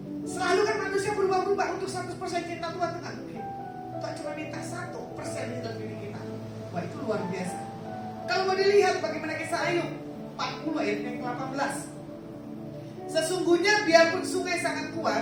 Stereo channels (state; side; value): identical; both; correlation 1.00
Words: Selalu kan manusia berubah-ubah. Untuk 100% cinta Tuhan itu nggak mungkin. Tuhan cuma minta 1% di dalam diri kita. Wah itu luar biasa. Kalau mau dilihat bagaimana kisah Ayub 40 ayat yang ke-18. Sesungguhnya biarpun sungai sangat kuat